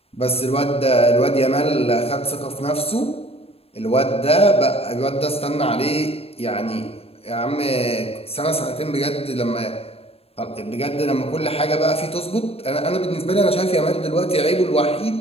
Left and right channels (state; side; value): late; right; 0.28 ms